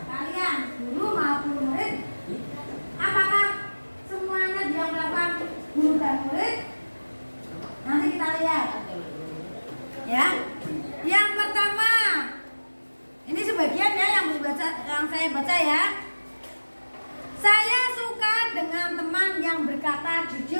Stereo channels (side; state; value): both; inverted; correlation -1.00